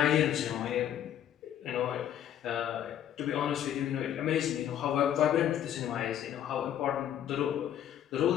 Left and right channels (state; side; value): quieter; right; 10.5 dB